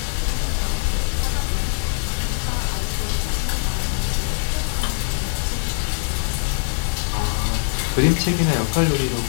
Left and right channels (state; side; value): silent; right; 64 dB below the other